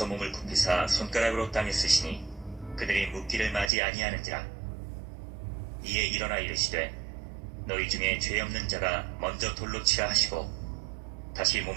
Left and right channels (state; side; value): drops out; left; at 3.7 s